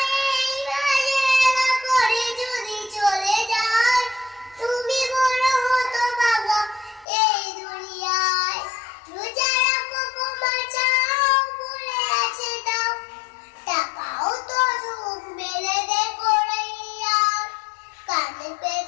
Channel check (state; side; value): drops out; right; at 7.1 s